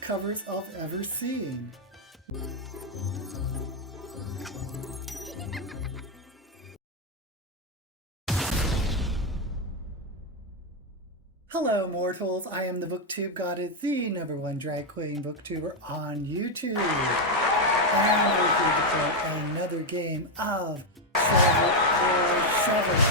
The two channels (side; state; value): both; normal; correlation 0.03